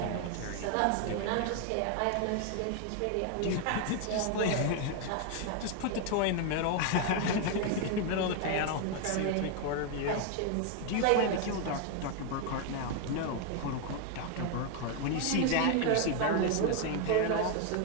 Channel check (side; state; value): both; different; correlation 0.00